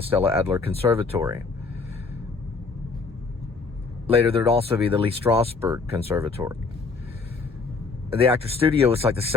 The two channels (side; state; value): right; quieter; 4.4 dB